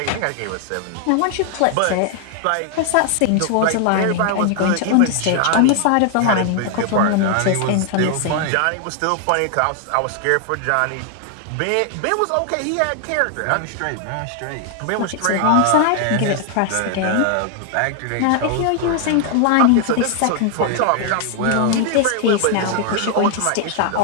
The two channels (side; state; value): both; different; correlation 0.00